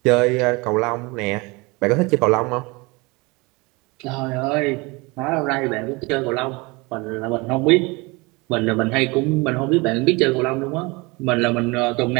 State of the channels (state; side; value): quieter; left; 25.7 dB